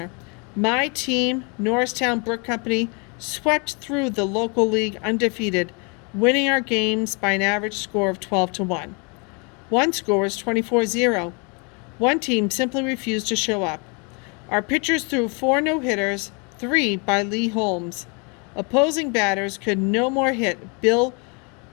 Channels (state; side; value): quieter; right; 33.2 dB